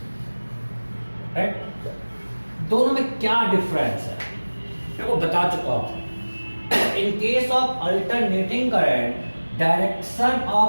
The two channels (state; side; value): inverted; both; correlation -1.00